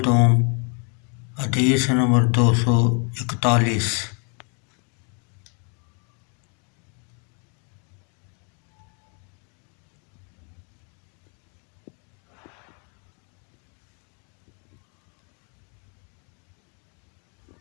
دوم حدیث نمبر 241۔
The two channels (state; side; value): quieter; right; 37.6 dB